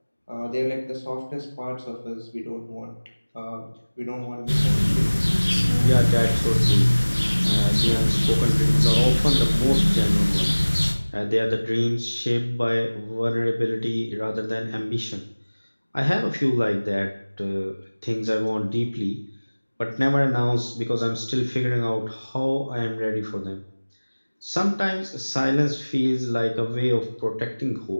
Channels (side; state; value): both; inverted; correlation -1.00